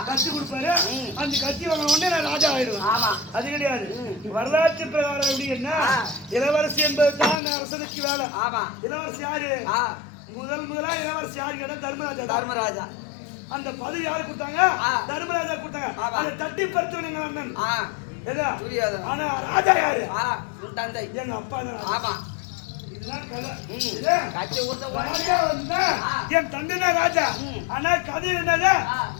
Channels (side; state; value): right; drops out; at 7.4 s